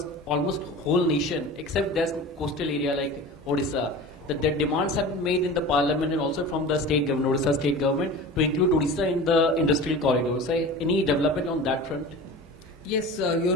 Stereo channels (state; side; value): normal; both; correlation 0.35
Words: almost whole nation, except there's coastal area like Odisha. The demands have been made in the parliament and also from the state government, Odisha state government, to include Odisha in the industrial corridors. Any development on that front? Yes, you're